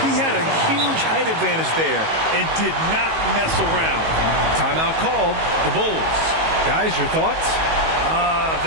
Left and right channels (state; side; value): late; left; 19 ms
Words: He had a huge height advantage there and did not mess around. Timeout called. The Bulls. Guys, your thoughts?